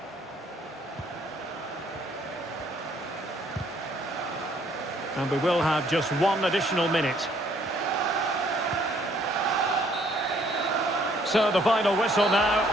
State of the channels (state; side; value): normal; both; correlation 0.64